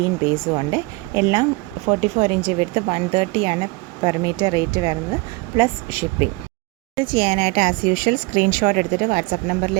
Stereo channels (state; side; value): quieter; left; 25.2 dB